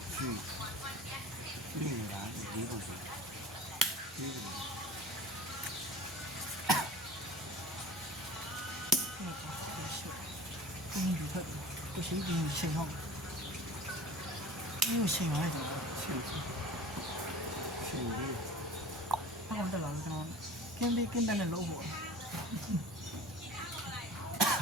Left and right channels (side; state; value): both; normal; correlation 0.39